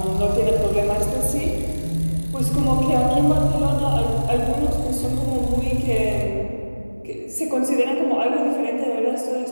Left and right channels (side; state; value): both; inverted; correlation -1.00